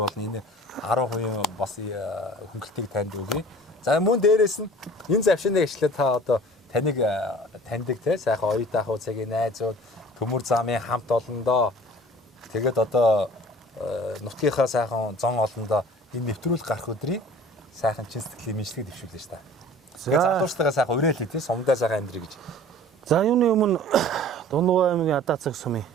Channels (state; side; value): normal; both; correlation 0.46